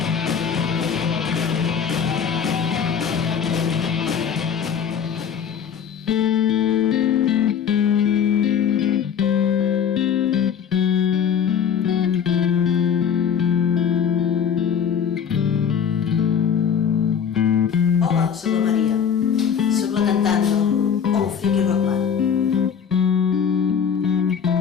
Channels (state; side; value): quieter; right; 7.5 dB